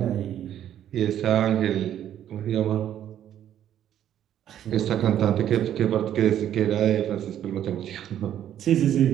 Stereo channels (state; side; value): quieter; left; 10.8 dB